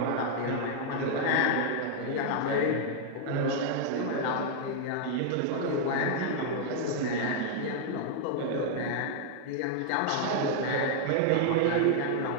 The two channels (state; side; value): different; both; correlation 0.00